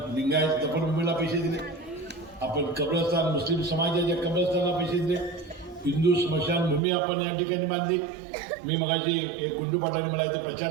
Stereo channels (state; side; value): drops out; left; at 6.8 s